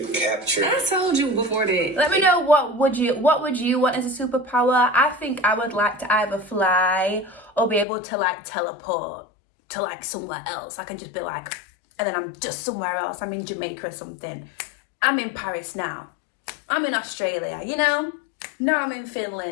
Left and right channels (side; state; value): right; drops out; at 7.9 s